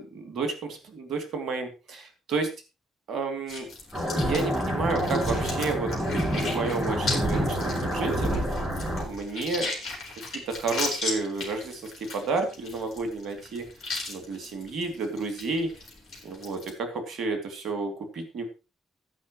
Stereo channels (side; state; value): both; normal; correlation 0.63